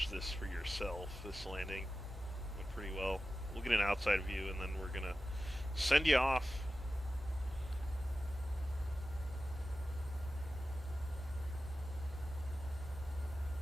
this for yourself. This landing went pretty well. We'll get an outside view, and then we're going to send you off.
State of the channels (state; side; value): noise; right; hum, 12 dB below the sound